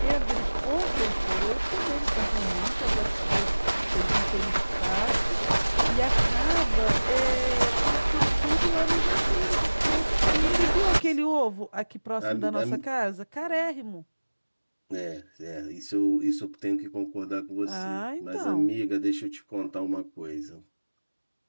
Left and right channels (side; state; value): both; inverted; correlation -1.00